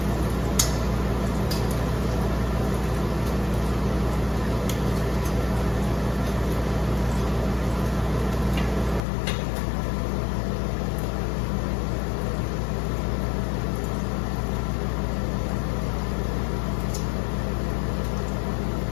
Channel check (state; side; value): drops out; right; at 9.0 s